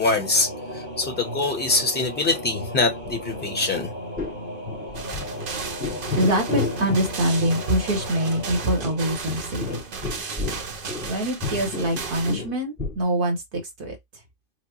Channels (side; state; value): left; late; 2.5 ms